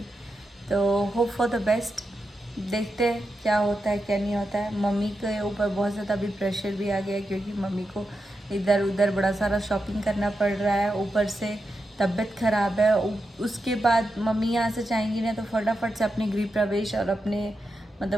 तो होप फॉर द बेस्ट, देखते हैं क्या होता है क्या नहीं होता है। मम्मी के ऊपर बहुत ज़्यादा अभी प्रेशर भी आ गया है, क्योंकि मम्मी को इधर उधर बड़ा सारा शॉपिंग करना पड़ रहा है, ऊपर से तबीयत ख़राब है। उसके बाद मम्मी यहाँ से जाएंगी ना तो फटाफट से अपने गृह प्रवेश और अपने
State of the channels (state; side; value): normal; both; correlation 0.87